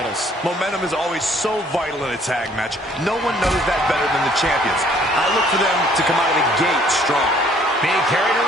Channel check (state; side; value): normal; both; correlation 0.60